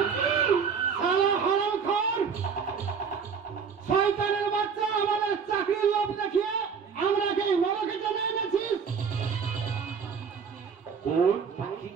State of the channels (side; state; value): left; quieter; 6.3 dB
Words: শয়তানের বাচ্চা, আমাদের চাকরির লোভ দেখিয়ে আমরা কে নরকে টেনে এনেছিস। কোন পাখি